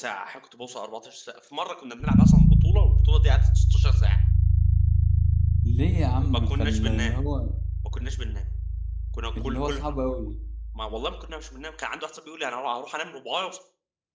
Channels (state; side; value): identical; both; correlation 1.00